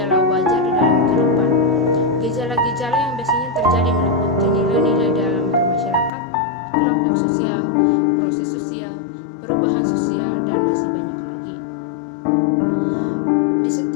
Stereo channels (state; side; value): drops out; right; at 6.1 s